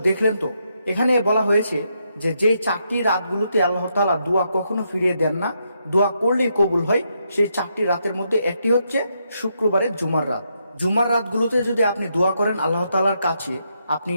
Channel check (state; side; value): inverted; both; correlation -0.79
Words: দেখলেন তো, এখানে বলা হয়েছে যে যেই ৪টি রাতগুলোতে আল্লাহ তাআলা দোয়া কখনো ফিরিয়ে দেন না, দোয়া করলেই কবুল হয়, সেই ৪টি রাতের মধ্যে একটি হচ্ছে শুক্রবারের জুমার রাত। জুমার রাতগুলোতে যদি আপনি দোয়া করেন আল্লাহ তাআলার কাছে, আপনি